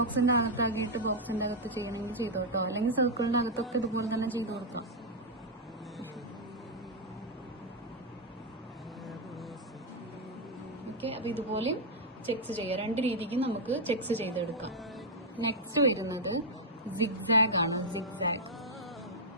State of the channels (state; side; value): normal; both; correlation -0.02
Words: അകത്താക്കിയിട്ട് ബോക്സിന്റെ അകത്ത് ചെയ്യണമെങ്കിൽ ചെയ്തു കേട്ടോ, അല്ലെങ്കിൽ സർക്കിളിന്റെ അകത്തൊക്കെ ഇതുപോലെ തന്നെ ചെയ്ത് കൊടുക്കാം. ഓക്കെ, അപ്പൊ ഇതുപോലെ ചെക്സ് ചെയ്യാം. രണ്ട് രീതിക്ക് നമുക്ക് ചെക്സ് ചെയ്തെടുക്കാം. നെക്സ്റ്റ് വരുന്നത് സിഗ്സാഗ് ആണ്.